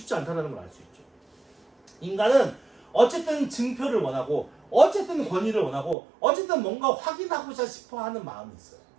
않다는 걸 알 수 있죠. 인간은 어쨌든 증표를 원하고 어쨌든 권위를 원하고 어쨌든 뭔가 확인하고자 싶어하는 마음이 있어요.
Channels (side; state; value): left; drops out; at 6.0 s